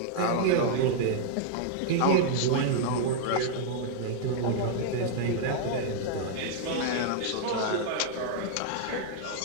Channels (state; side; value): different; both; correlation -0.01